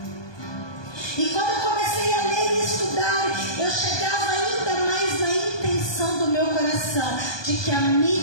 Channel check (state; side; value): late; right; 1.2 ms